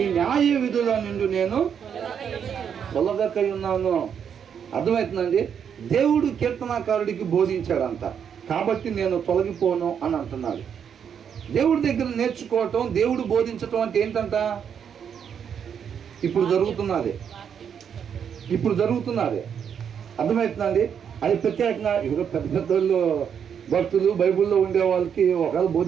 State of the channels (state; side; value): quieter; left; 7.8 dB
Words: న్యాయ విధుల నుండి నేను తొలగకై ఉన్నాను. అర్థమవుతుందండి? దేవుడు కీర్తనకారుడికి బోధించాడంట. కాబట్టి నేను తొలగిపోను అని అంటున్నాడు. దేవుడి దగ్గర నేర్చుకోవటం, దేవుడు బోధించటం అంటే ఏంటంట? ఇప్పుడు జరుగుతున్నది అర్థమవుతుందండి. అది ప్రత్యేకంగా ఇప్పుడు పెద్ద పెద్దోళ్ళు భక్తులు బైబిల్లో ఉండే వాళ్ళకి ఒకవేళ